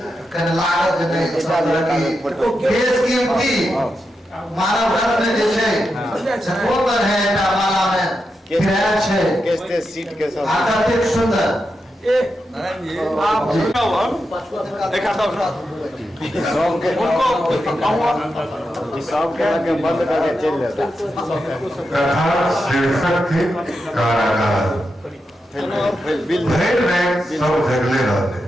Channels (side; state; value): both; normal; correlation 0.87